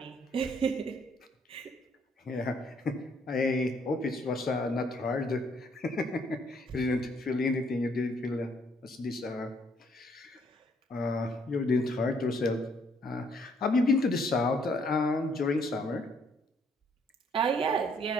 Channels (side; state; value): both; normal; correlation 0.66